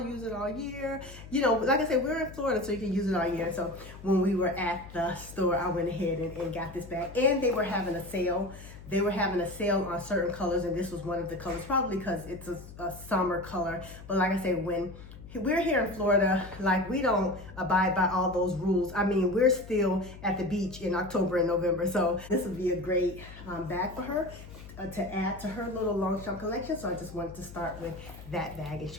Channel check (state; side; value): noise; left; hum, 16 dB below the sound